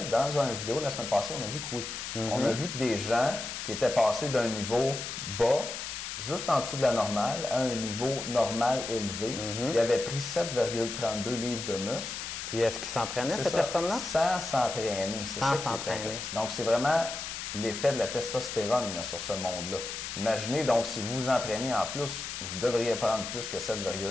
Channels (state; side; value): noise; left; hiss, 6 dB below the sound